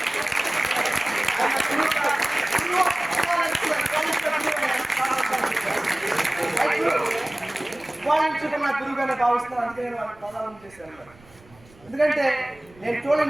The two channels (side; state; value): right; noise; rumble, 26 dB below the sound